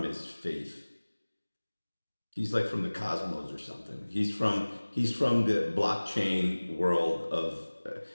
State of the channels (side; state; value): both; inverted; correlation -1.00